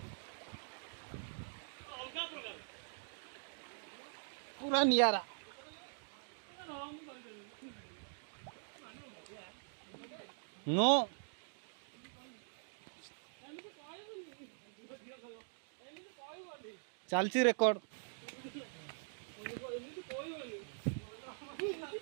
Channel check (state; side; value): silent; left; digital silence